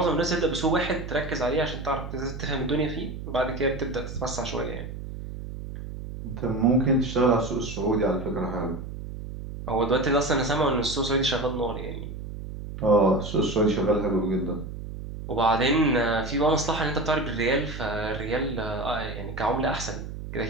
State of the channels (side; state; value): right; noise; hum, 9 dB below the sound